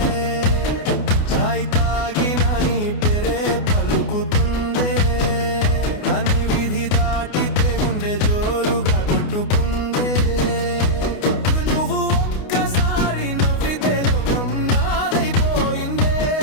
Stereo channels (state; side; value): late; right; 29 ms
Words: చాయ్ తాగినా నీ పేరే పలుకుతుందే, కానీ విధి దాటితే గుండె జోరుగా కొట్టుకుందే. నువ్వు ఒక్కసారి నవ్వితే లోకం నాదైపోయిందే,